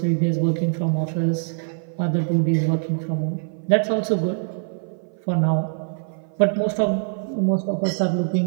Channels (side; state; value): left; silent; 56 dB below the other